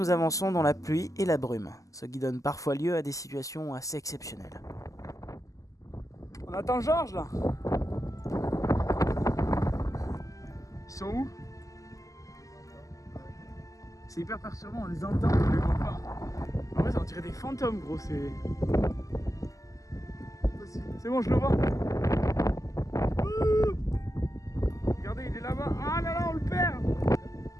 avançons dans la pluie et la brume, ce qui donne parfois lieu à des situations assez exceptionnelles. On attend Georges là. Ils sont où? C'est hyper perturbant, on les entend, on les voit pas. En vrai, ça on dirait des fantômes, gros, c'est... C'est bon, je le vois. Ouh, regardez, il est là-bas. Ah là là, on le perd.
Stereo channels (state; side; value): late; right; 0.16 ms